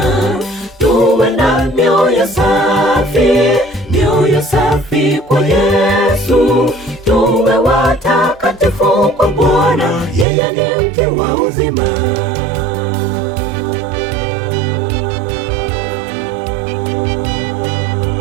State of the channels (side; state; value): left; drops out; at 10.2 s